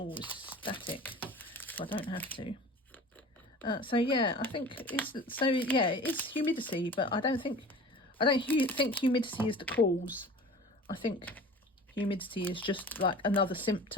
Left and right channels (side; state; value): both; normal; correlation 0.40